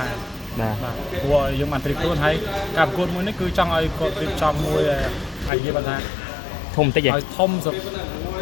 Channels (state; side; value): drops out; right; at 5.5 s